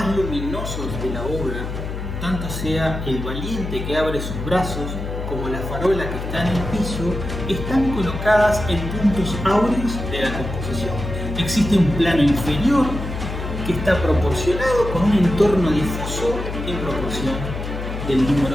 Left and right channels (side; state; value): left; noise; hum, 6 dB below the sound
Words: luminosos de la obra, tanto sea el valiente que abre sus brazos como la farola que está en el piso, están colocadas en puntos áureos de la composición. Existe un plano inferior que está proporcionado con un entorno difuso en proporción del